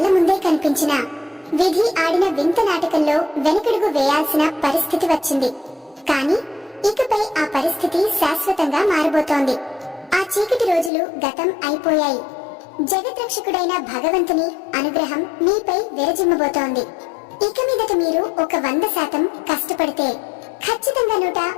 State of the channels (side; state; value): right; drops out; at 10.9 s